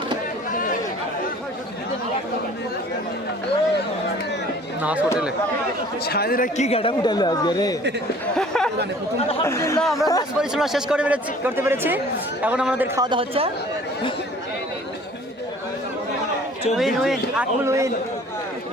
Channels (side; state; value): both; normal; correlation 0.50